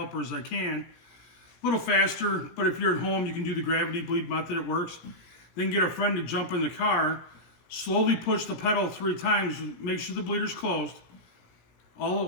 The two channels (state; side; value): late; right; 17 ms